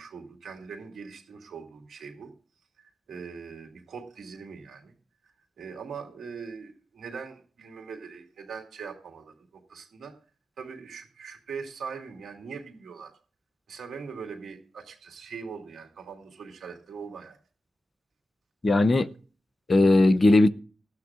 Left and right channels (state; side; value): normal; both; correlation 0.93